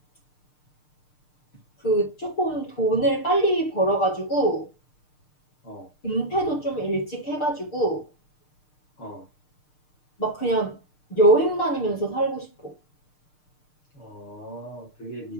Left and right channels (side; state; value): right; late; 6.6 ms